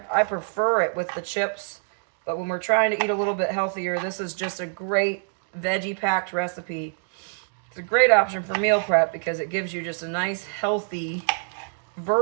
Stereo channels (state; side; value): silent; left; digital silence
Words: prefer it with the chips, but when we're trying to eat a little bit healthier, this is just a great veggie-packed recipe It's a great option for meal prep because it gives you just a nice, healthy